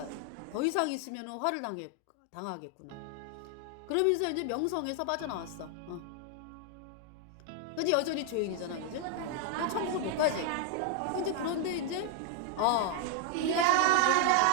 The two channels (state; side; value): different; both; correlation 0.00